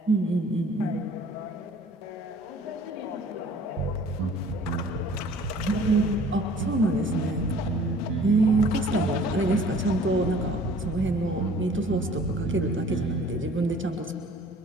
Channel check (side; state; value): both; normal; correlation 0.51